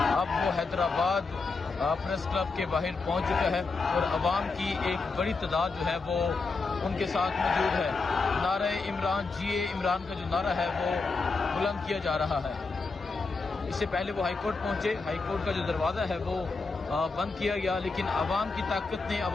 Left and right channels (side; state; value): right; quieter; 4.1 dB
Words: اب وہ حیدرآباد پریس کلب کے باہر پہنچ چکا ہے، اور عوام کی ایک بڑی تعداد جو ہے وہ ان کے ساتھ موجود ہے۔ نعرہ عمران جیے عمران کا جو نعرہ ہے وہ بلند کیا جا رہا ہے۔ اس سے پہلے وہ ہائی کورٹ پہنچے، ہائی کورٹ کا جو دروازہ ہے وہ بند کیا گیا، لیکن عوام کی طاقت نے،